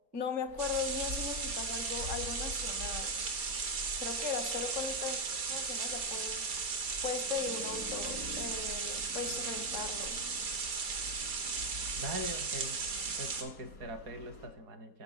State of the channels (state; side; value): late; left; 4.3 ms